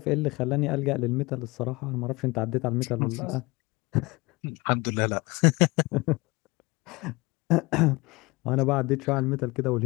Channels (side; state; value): right; quieter; 23.8 dB